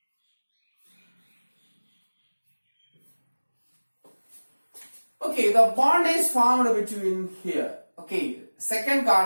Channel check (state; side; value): inverted; both; correlation -1.00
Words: Okay, the bond is formed between here. Okay, second